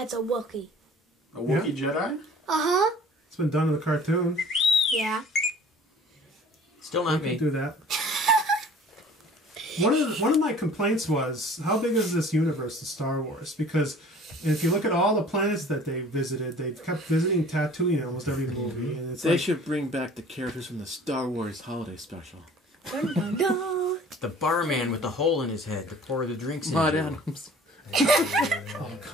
a Wookiee. A Wookiee Jedi? Uh-huh. It's been done in the cartoon. Yeah. Still not Could me. do that. One of my complaints was, how big is this universe of Star Wars? Because if you look at all the planets that they visited, they've kept visiting Tatooine in almost every movie, and it's They like, should bring back the characters from the Star Wars holiday special. Dun, dun, dun. The barman with the hole in his head to pour the drinks Maud into. Adams. oh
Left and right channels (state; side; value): normal; both; correlation 0.49